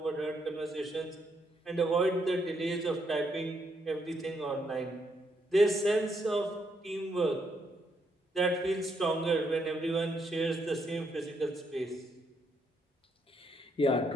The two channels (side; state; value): both; normal; correlation 0.76